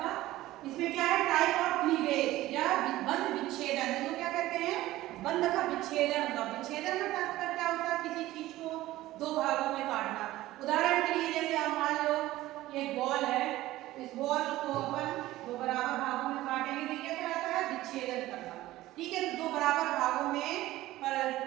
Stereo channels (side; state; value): left; quieter; 16.3 dB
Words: इसमें क्या है, टाइप ऑफ क्लीवेज या बंध विच्छेदन। इसको क्या कहते हैं, बंध का विच्छेदन। विच्छेदन का तात्पर्य क्या होता है, किसी चीज को दो भागों में काटना। उदाहरण के लिए जैसे आप मान लो ये बॉल है, इस बॉल को अपन दो बराबर भागों में काटेंगे तो क्या कहलाता है, विच्छेदन करना। ठीक है, तो दो बराबर भागों में